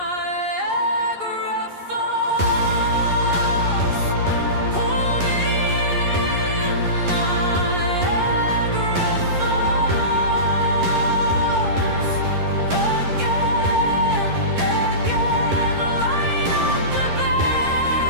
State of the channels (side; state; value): left; late; 11 ms